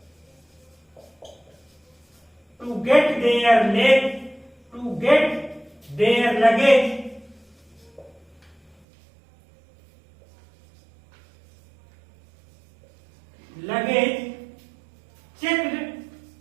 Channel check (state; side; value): drops out; left; at 8.8 s